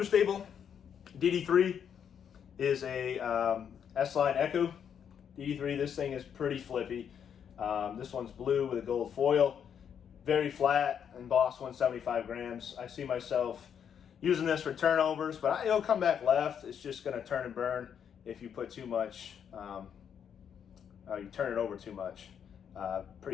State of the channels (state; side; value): quieter; right; 8.1 dB